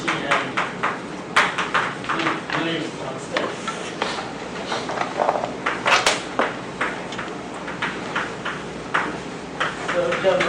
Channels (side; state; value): both; identical; correlation 1.00